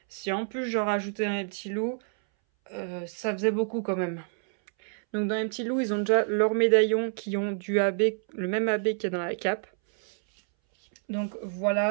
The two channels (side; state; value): left; silent; 59 dB below the other